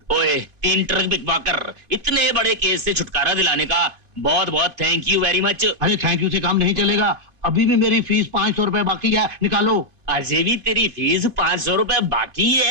ओए 3 ट्रक बिकवाकर इतने बड़े केस से छुटकारा दिलाने का बहुत बहुत थैंक यू वेरी मच। अरे थैंक यू से काम नहीं चलेगा। अभी भी मेरी फीस 500 रुपए बाकी है, निकालो। अजे भी तेरी फीस 500 रुपए बाकी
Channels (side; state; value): left; late; 2.5 ms